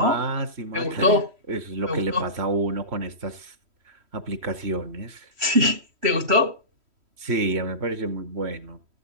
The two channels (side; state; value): left; late; 3.1 ms